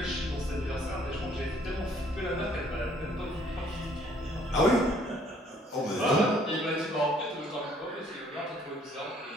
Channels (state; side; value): normal; both; correlation 0.62